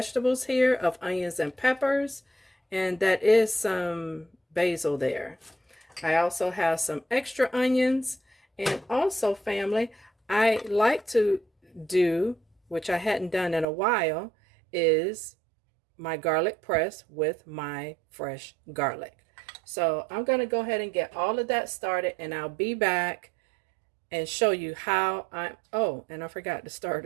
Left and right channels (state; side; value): drops out; left; at 13.7 s